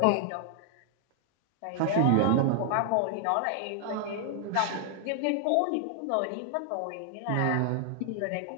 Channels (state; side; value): different; both; correlation 0.00